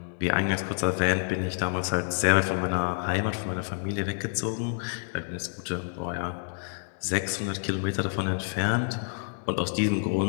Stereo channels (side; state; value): right; silent; digital silence